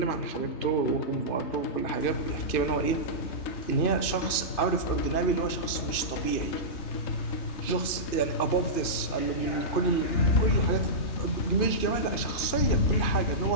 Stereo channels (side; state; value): right; late; 3.2 ms